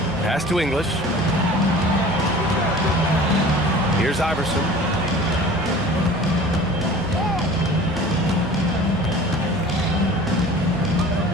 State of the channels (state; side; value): normal; both; correlation 0.43